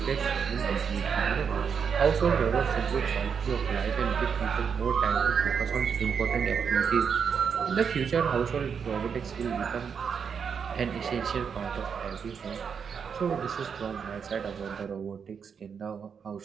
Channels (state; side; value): quieter; left; 6.6 dB